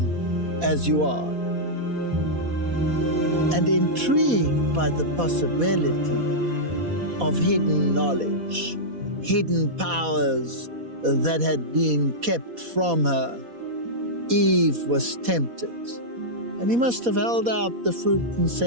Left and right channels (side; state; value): left; late; 4.1 ms